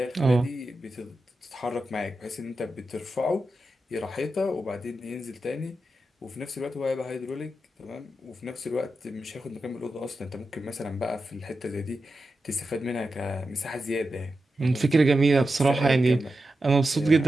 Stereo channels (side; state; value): both; normal; correlation 0.90